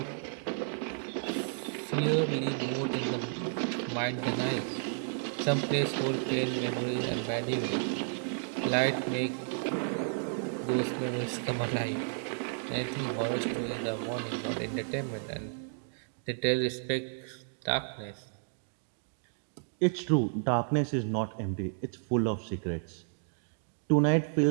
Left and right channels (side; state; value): left; silent; digital silence